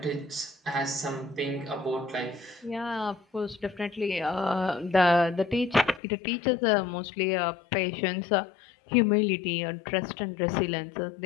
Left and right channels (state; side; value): drops out; right; at 6.0 s